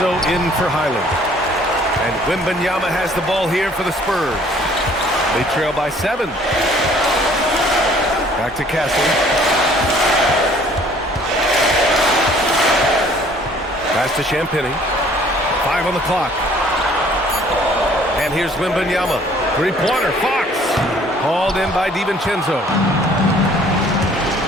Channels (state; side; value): normal; both; correlation 0.57